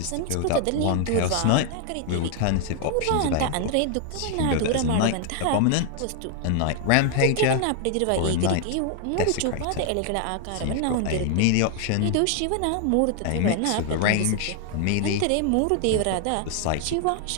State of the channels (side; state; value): both; different; correlation 0.00